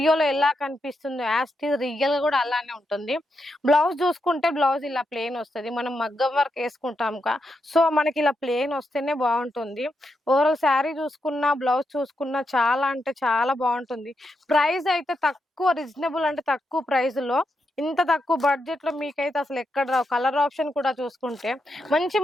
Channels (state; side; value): normal; both; correlation 0.84